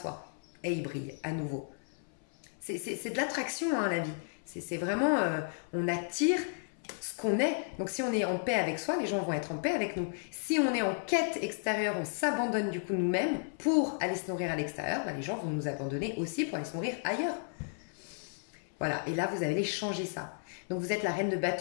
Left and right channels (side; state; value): right; silent; 56 dB below the other